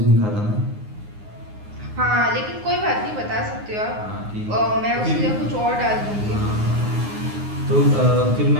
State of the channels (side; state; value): left; late; 9.7 ms